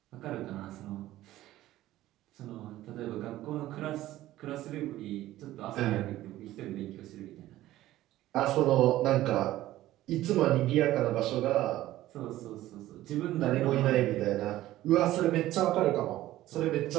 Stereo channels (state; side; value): quieter; left; 15.1 dB